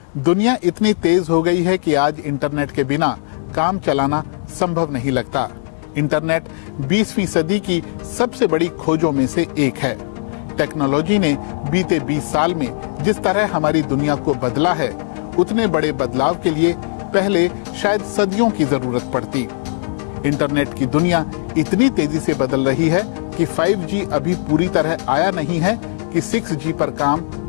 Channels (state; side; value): silent; right; digital silence